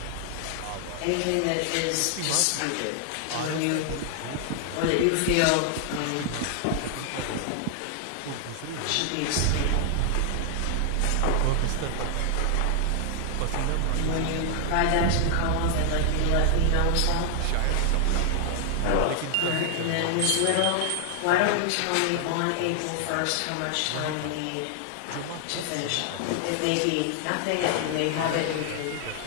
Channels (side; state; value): both; different; correlation 0.00